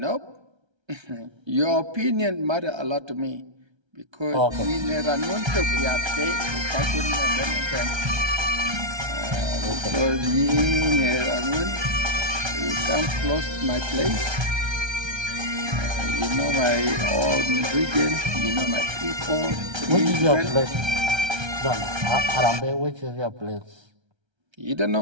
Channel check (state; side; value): late; left; 1.3 ms